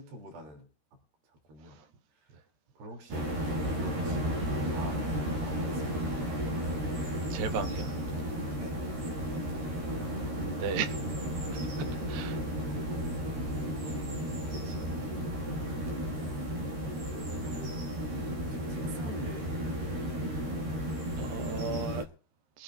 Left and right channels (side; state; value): left; late; 13 ms